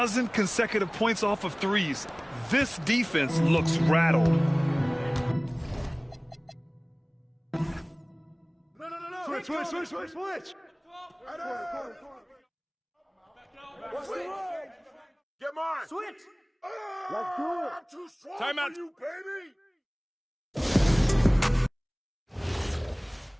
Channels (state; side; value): identical; both; correlation 1.00